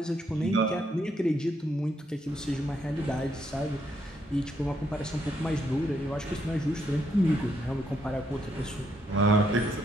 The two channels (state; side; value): normal; both; correlation 0.75